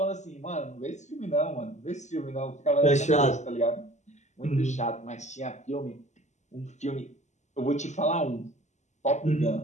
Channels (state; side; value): late; right; 0.34 ms